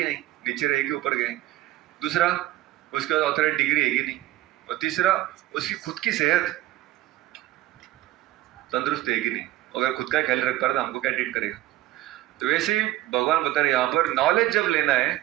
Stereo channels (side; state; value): left; quieter; 15.6 dB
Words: नहीं, नीचे रहे कि ऊपर गए, दूसरा उसके बाद ऑथराइज डिग्री है कि नहीं, और तीसरा उसकी खुद की सेहत तंदुरुस्त है कि नहीं। अगर खुद का ख्याल रख पा रहा तो हमको क्या ट्रीट करेगा? तो वैसे ही भगवान बता रहे यहाँ पर नॉलेज जब लेना है